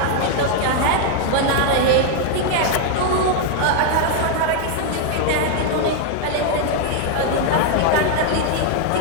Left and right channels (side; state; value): both; different; correlation 0.00